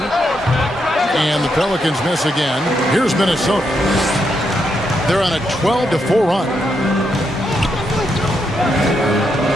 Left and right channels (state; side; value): normal; both; correlation 0.80